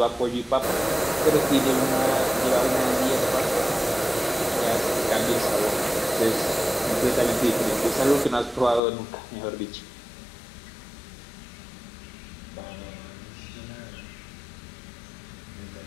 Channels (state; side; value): drops out; right; at 8.8 s